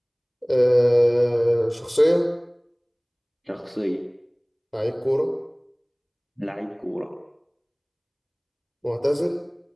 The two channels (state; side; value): identical; both; correlation 1.00